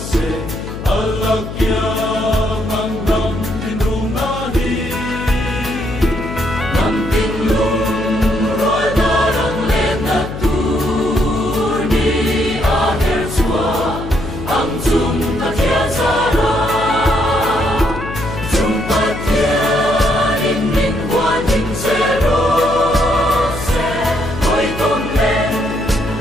alakyang ang nam tinrungahi nam tinlung roadarang lenatur ni aher sua ang zum kakiazara zum patian in min huaning zero se hoi tong len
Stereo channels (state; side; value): noise; left; hum, 9 dB below the sound